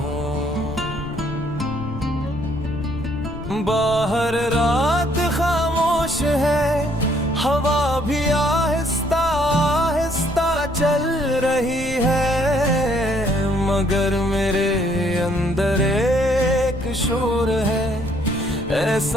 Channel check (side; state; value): left; noise; rumble, 12 dB below the sound